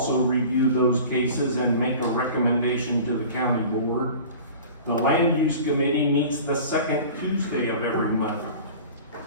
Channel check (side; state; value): both; inverted; correlation -0.41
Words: review those cases and make a recommendation to the county board. The Land Use Committee meets the 2nd Tuesday of every month.